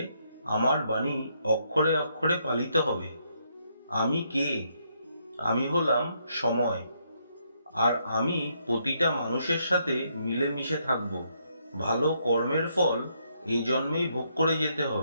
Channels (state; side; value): inverted; both; correlation -0.74